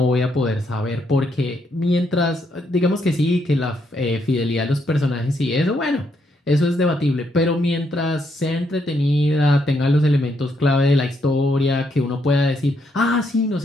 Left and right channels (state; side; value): normal; both; correlation 0.76